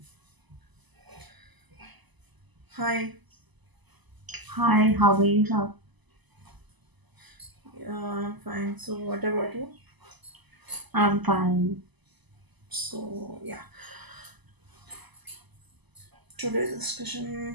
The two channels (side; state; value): left; late; 1.0 ms